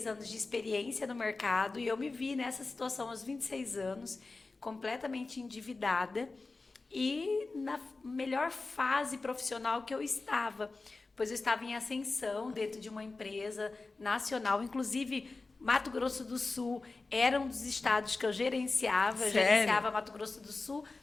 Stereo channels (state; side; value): quieter; right; 3.7 dB